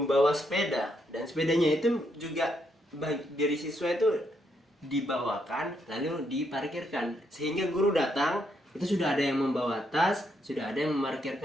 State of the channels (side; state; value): both; normal; correlation 0.77